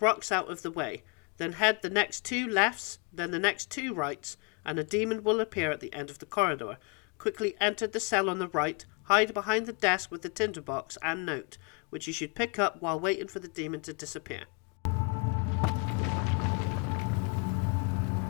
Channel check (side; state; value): right; quieter; 34.5 dB